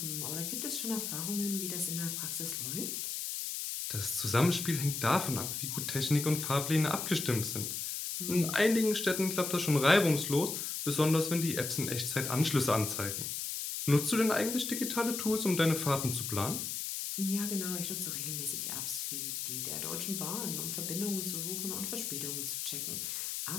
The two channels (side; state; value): left; noise; hiss, 3 dB below the sound